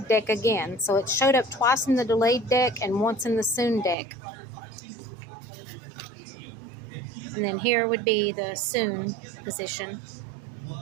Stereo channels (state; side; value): drops out; left; at 4.0 s